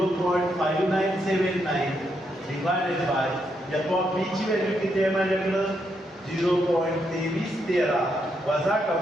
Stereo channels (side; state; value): both; normal; correlation 0.79